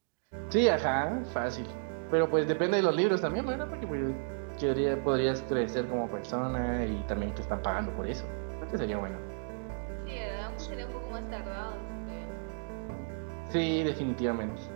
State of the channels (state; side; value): silent; left; digital silence